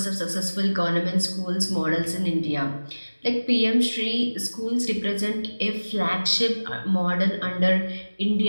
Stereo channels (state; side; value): inverted; both; correlation -1.00